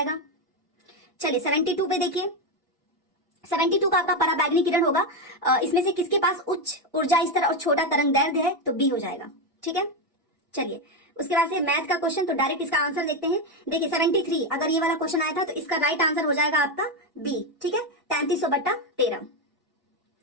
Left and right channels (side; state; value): both; normal; correlation 0.09